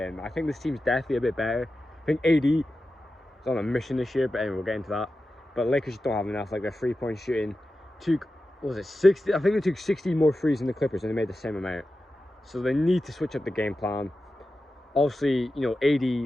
I think this team's definitely a bit better. I think AD is on a mission this year, but anyway, we'll get into that. But Lakers don't have enough. Like their three-point shooting took, what was it, 60? I think they took 60 more threes than the Clippers, and they made the same amount. So they need to switch up the game plan. Obviously, you know, AD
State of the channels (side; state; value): both; normal; correlation 0.92